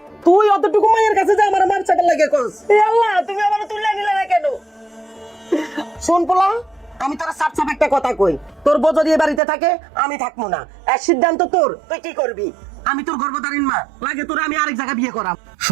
তুই অতটুকু মায়ের কাছে যে আমার মার চাটা লাগে কস, এ আল্লাহ তুমি আমার তুলে নিলে না কেন? শোন পোলা, আমি তোর সাপ সাপ একটা কথা কই, তোর বউ যদি এ বাড়িতে থাকে আমি থাকবো না, এক সিদ্ধান্ত তোর, তুই কি করবি? আমি তোর গর্ভধারীণ মা, লাগে তোর আমি আরেক জায়গা বিয়ে করাম।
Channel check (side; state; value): left; drops out; at 9.4 s